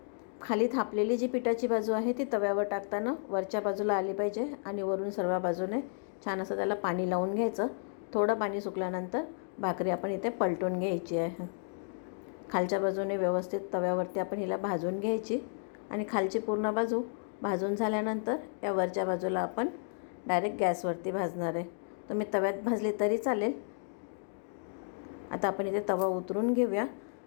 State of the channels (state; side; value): silent; right; digital silence